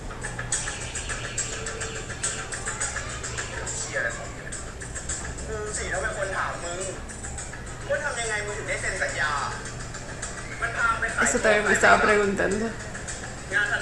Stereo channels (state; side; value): identical; both; correlation 1.00